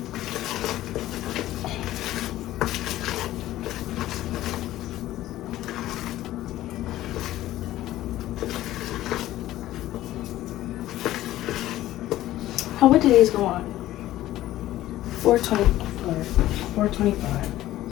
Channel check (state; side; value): quieter; right; 14.7 dB